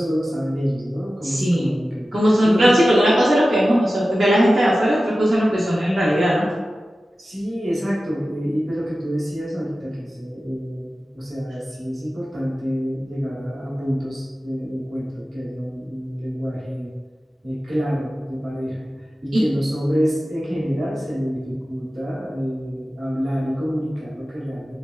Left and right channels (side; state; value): both; normal; correlation 0.95